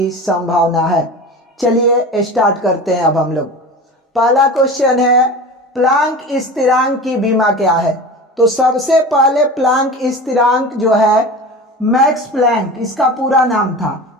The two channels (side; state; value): both; normal; correlation 0.33